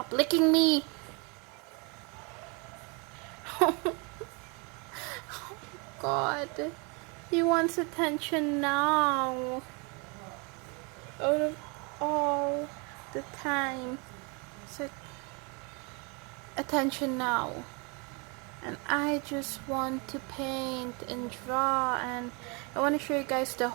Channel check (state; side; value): quieter; left; 31.9 dB